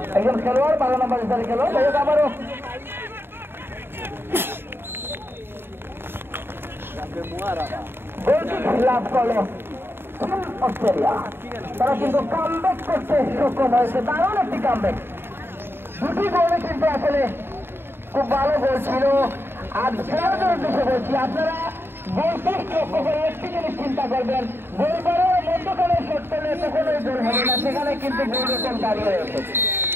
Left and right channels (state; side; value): late; left; 0.11 ms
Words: একজন খেলোয়াড় 12 নম্বর জাতীয় খেলোয়াড়। যাই হোক আবারও লাভ করলো অস্ট্রেলিয়া। তারা কিন্তু কামব্যাক করতে সক্ষম হয়েছে, দারুণ একটি কামব্যাক। দুটি গোলে কিন্তু আসলে খুব ভালো গোল ছিল। আর খেলোয়াড়দের উদ্দেশ্যে বলছি, আপনারা গোল পোস্ট লক্ষ্য করে একটি জিনিস চিন্তা করবেন, গোল করার মধ্যখানে শট করলে কখনোই গোল হবে না, সেখানে কিন্তু গোল রকম দাঁড়িয়ে রয়েছে।